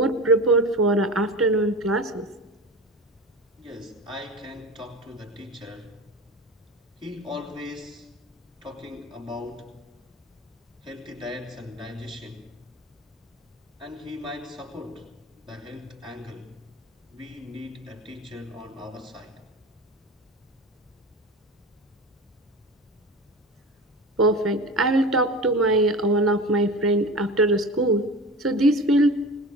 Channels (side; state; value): both; normal; correlation 0.32